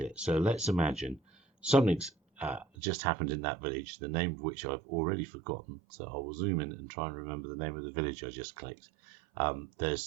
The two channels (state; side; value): drops out; left; at 2.7 s